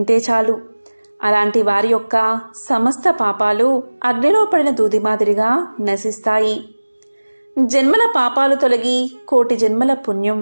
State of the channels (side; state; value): both; inverted; correlation -1.00